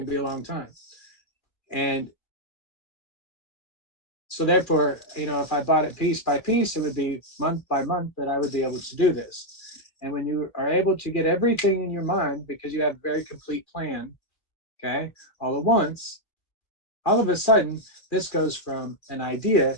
be a long time. And so therefore, if I bought it piece by piece, it would be month by month that I would be able to do this. And when you are able to get everything in your mind, because you have a very complete plan, okay, all at once, all of a sudden, this goes from an idea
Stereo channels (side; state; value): right; late; 2.3 ms